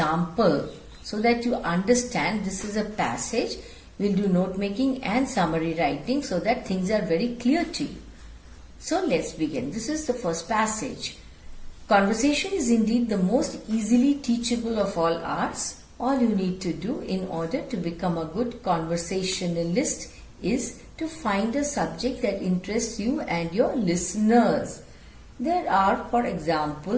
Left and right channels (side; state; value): both; identical; correlation 1.00